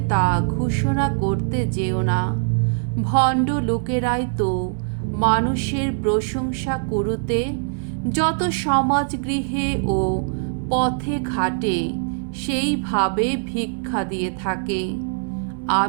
তা ঘোষণা করতে যেও না। ভণ্ড লোকেরাই তো মানুষের প্রশংসা করতে যত সমাজগৃহে ও পথে ঘাটে সেইভাবে ভিক্ষা দিয়ে থাকে।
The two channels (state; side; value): silent; left; digital silence